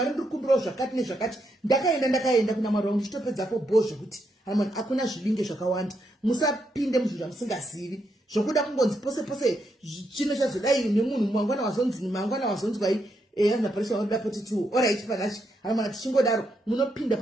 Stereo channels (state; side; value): normal; both; correlation 0.80